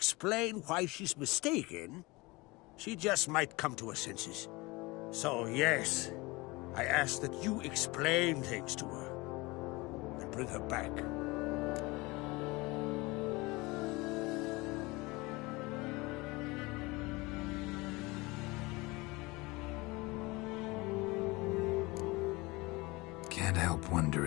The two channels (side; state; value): right; quieter; 23.4 dB